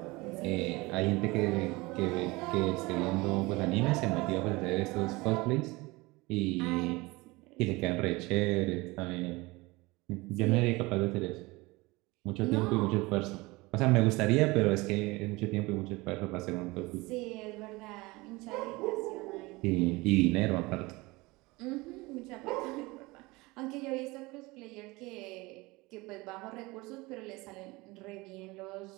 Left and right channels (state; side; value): quieter; left; 22.7 dB